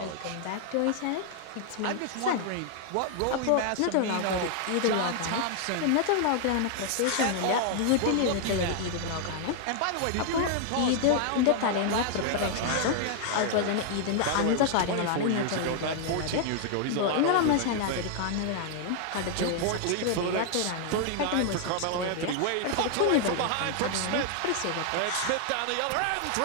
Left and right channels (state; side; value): different; both; correlation 0.00